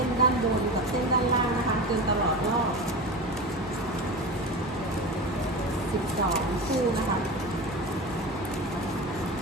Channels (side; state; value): both; normal; correlation 0.27